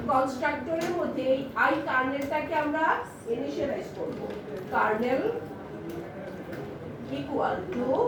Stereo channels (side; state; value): both; identical; correlation 1.00